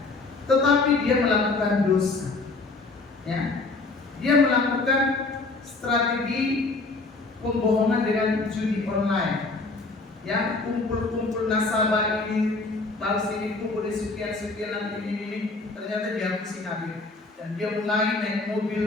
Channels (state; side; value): quieter; right; 3.6 dB